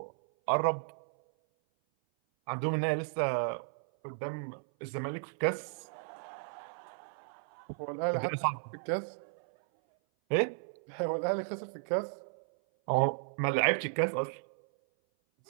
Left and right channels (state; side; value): silent; left; 55 dB below the other